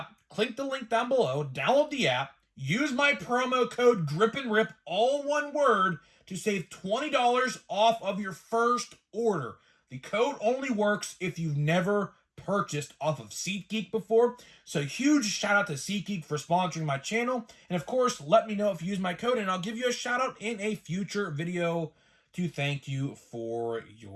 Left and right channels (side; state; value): both; identical; correlation 1.00